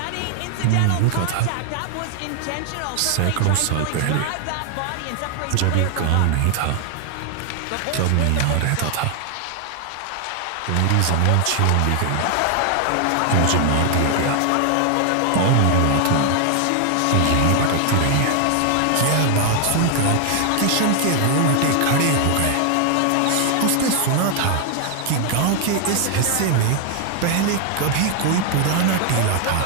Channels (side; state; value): both; different; correlation 0.00